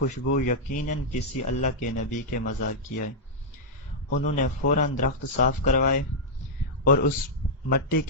یقیناً کسی اللہ کے نبی کے مزار کی ہے۔ انہوں نے فوراً درخت صاف کروائے اور اس مٹی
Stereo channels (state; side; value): normal; both; correlation -0.08